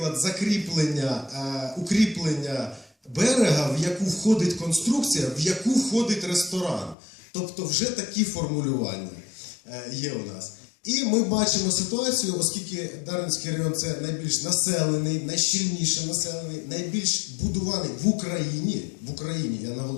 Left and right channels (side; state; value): right; drops out; at 7.0 s